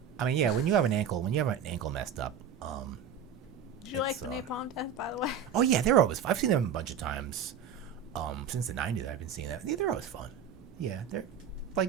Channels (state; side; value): quieter; left; 7.4 dB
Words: When you have an ankle messed up, Did you like the Napalm Death, by the way? Oh yeah, they're always fun. I've seen them a bunch of times. Since the 90s, I've been seeing that. Yeah, they're always fun. Yeah,